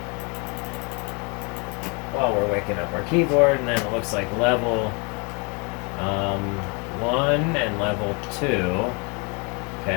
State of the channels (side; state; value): right; quieter; 31.8 dB